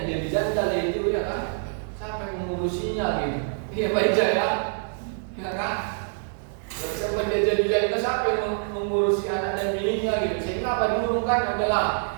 dia dijandal itu ya kan, sampai mengurusinya gitu. Iya baik ya kan. Terus siapa dia jadi janda, siapa yang mengurusi anak dan bininya gitu. Sehingga apa diurungkan adalah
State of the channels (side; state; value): left; silent; digital silence